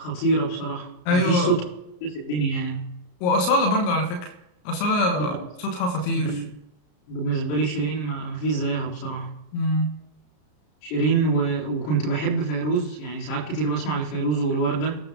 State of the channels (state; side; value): late; right; 33 ms